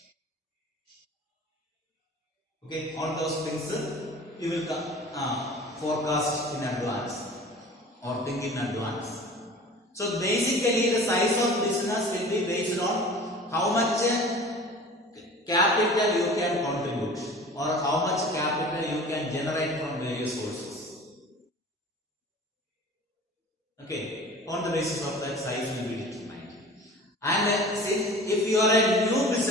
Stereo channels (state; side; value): normal; both; correlation 0.42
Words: Okay, all those things you will forecast in advance or think in advance. So basically the size of business will be based on how much capital you can contribute, or how much capital you can generate from various sources. Okay, on the basis of that, size will be determined. And since if you are a new